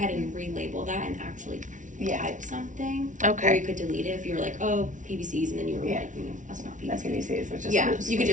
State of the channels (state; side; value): late; left; 0.37 ms